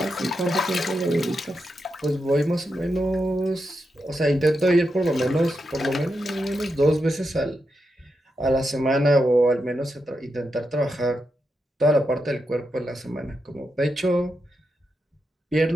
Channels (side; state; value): both; normal; correlation 0.86